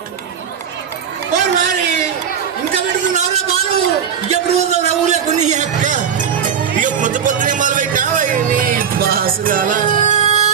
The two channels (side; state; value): left; quieter; 7.7 dB